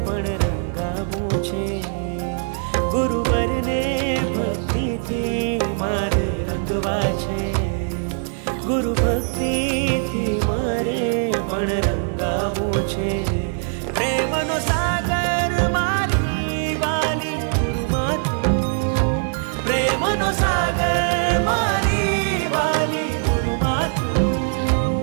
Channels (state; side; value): silent; left; 64 dB below the other